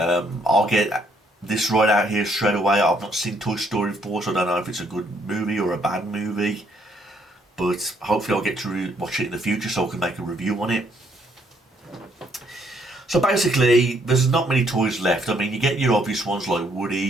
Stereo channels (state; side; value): normal; both; correlation 0.69